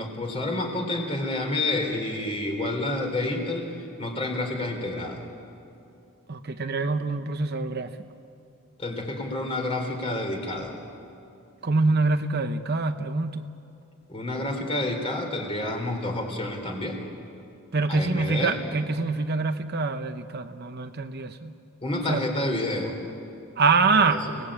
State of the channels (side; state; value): both; normal; correlation 0.37